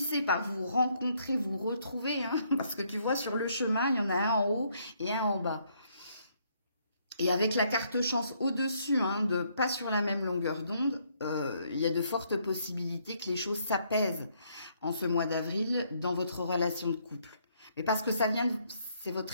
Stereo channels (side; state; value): both; inverted; correlation -0.70